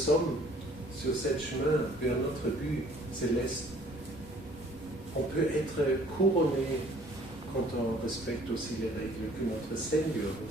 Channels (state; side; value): normal; both; correlation 0.56